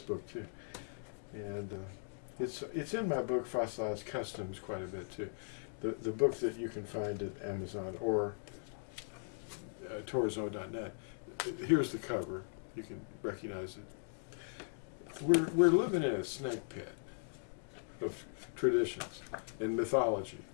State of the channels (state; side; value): silent; right; digital silence